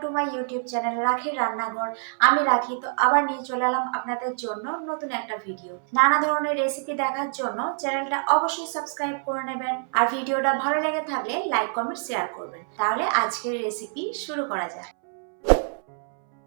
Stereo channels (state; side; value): silent; left; 61 dB below the other